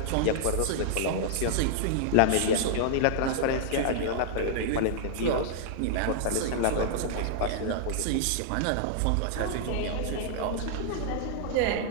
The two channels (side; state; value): both; different; correlation -0.01